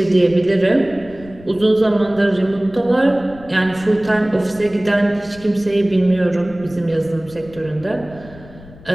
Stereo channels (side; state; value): left; noise; rumble, 20 dB below the sound